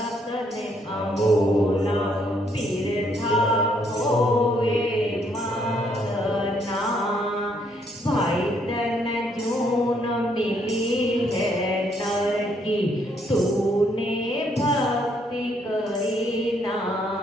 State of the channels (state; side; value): normal; both; correlation 0.71